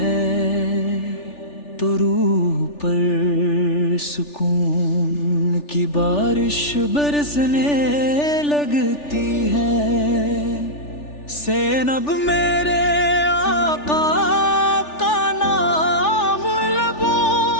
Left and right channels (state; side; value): late; right; 3.4 ms